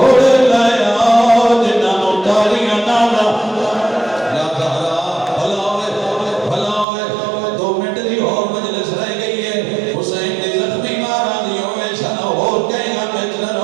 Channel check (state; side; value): drops out; left; at 6.9 s